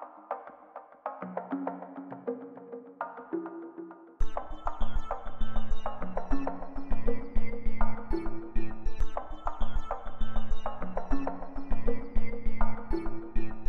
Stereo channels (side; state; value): both; identical; correlation 1.00